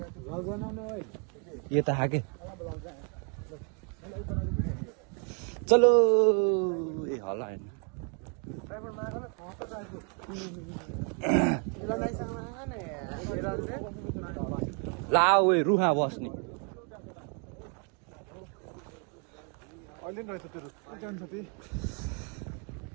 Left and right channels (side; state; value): left; quieter; 39.6 dB